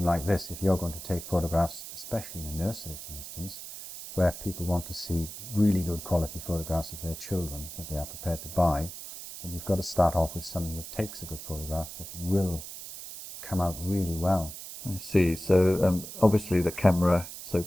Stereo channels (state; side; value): noise; right; hiss, 11 dB below the sound